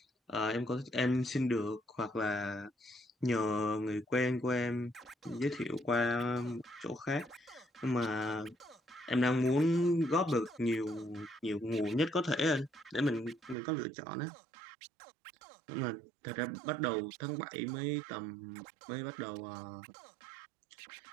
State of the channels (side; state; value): left; drops out; at 13.6 s